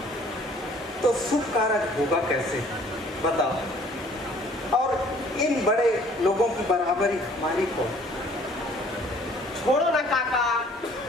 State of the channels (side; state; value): both; normal; correlation 0.56